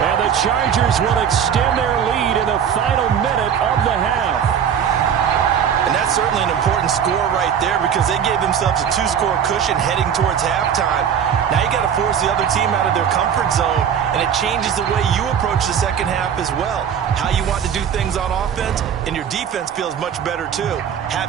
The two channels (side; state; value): left; quieter; 8.2 dB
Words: the Chargers will extend their lead in the final minute of the half. And that's certainly an important score right there because they gave themselves a 2-score cushion heading towards halftime. Now you got to force the other team out of their comfort zone, and it changes the way you approach the second half as well. How you want to do things on offense, and your defense feels much better too,